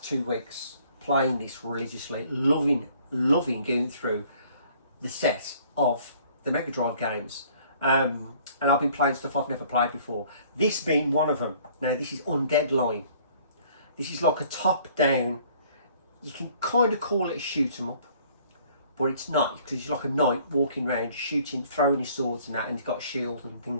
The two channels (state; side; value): inverted; both; correlation -0.57